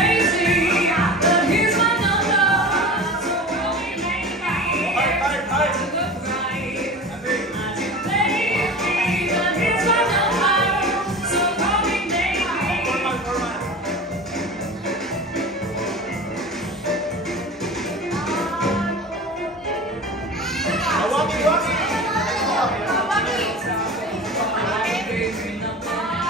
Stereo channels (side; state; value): both; normal; correlation 0.34